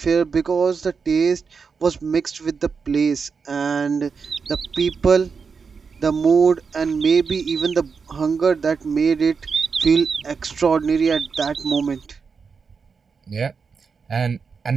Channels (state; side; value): quieter; left; 5.5 dB